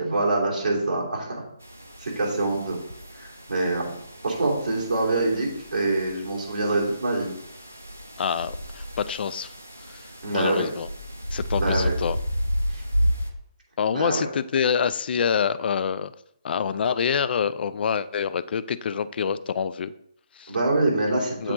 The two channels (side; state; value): both; inverted; correlation -0.70